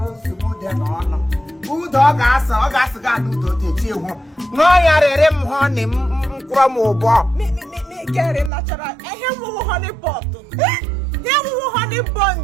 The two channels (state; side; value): drops out; left; at 8.5 s